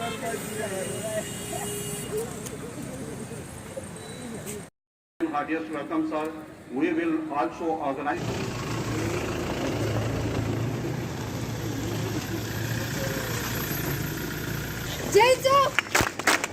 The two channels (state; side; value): identical; both; correlation 1.00